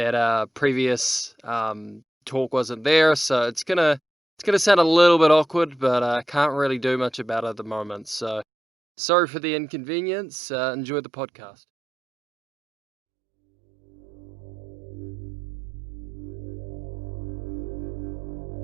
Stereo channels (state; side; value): drops out; left; at 8.5 s